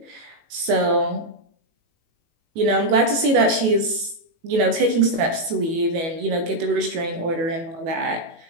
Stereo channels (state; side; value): late; left; 18 ms